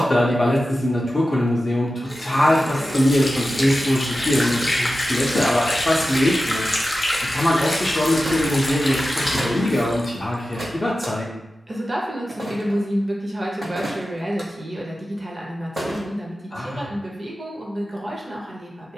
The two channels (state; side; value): normal; both; correlation 0.93